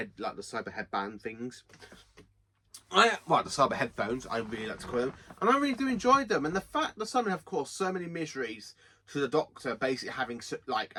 like the cyber headband things. The cyber headphones, I really like to call them, and I really do enjoy them. And the fact that some have caused so many miseries to the Doctor, basically having like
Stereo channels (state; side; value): identical; both; correlation 1.00